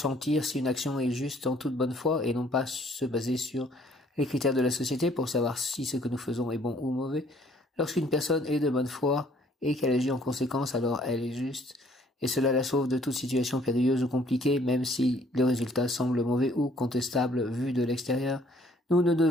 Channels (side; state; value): both; normal; correlation 0.61